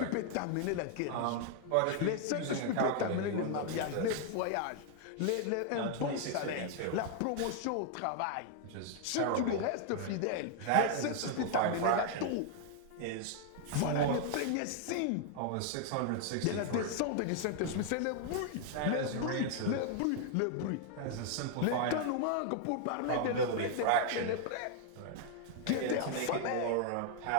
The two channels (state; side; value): different; both; correlation 0.00